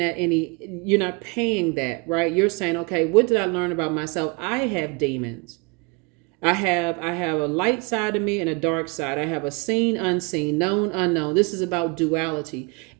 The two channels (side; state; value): left; quieter; 30.1 dB